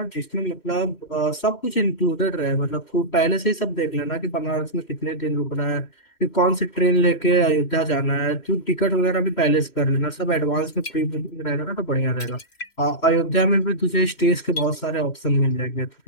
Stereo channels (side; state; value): right; late; 3.1 ms